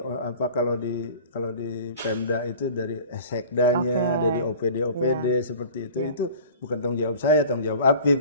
kalau di Pemda itu dari Sekdanya, dari OPD seperti itu itu bukan tanggung jawab saya, tanggung jawab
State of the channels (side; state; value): both; inverted; correlation -0.43